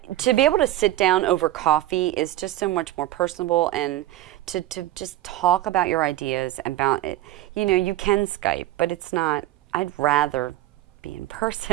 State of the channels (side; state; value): left; quieter; 14.9 dB